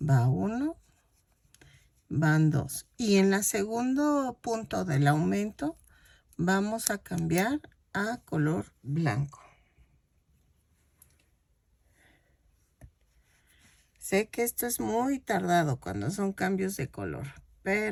Va 1, van 2. Y en el segundo punto del aumento vamos a cambiar a color blanco. Sé que esto es muy tardado cuando son cambios de color,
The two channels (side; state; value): both; identical; correlation 1.00